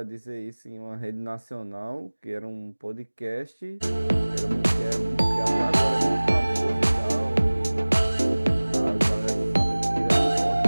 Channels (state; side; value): inverted; both; correlation -1.00